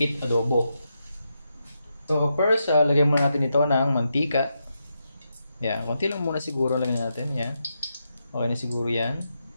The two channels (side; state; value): both; inverted; correlation -0.84